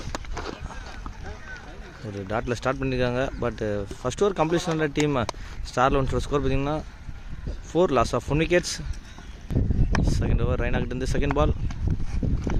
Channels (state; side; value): identical; both; correlation 1.00